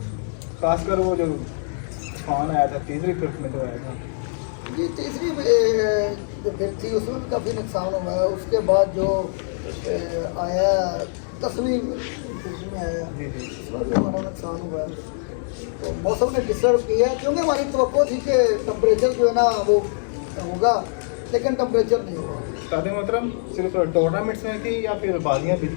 खासकर वो जो तूफान आया था तीसरी ट्रिप में जो आया था, ये तीसरी जो फिर थी उसमें भी काफ़ी नुकसान हुआ है। उसके बाद जो आया 10वीं में आया, उसमें भी हमारा नुकसान हुआ है। तो मौसम ने डिस्टर्ब किया, क्योंकि हमारी तवक्को थी कि टेम्परेचर जो है ना वो होगा, लेकिन टेम्परेचर नहीं हुआ। उस्ताद मोहतरम सिर्फ टूर्नामेंट्स में थी या फिर बाजियाँ भी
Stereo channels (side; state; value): right; silent; digital silence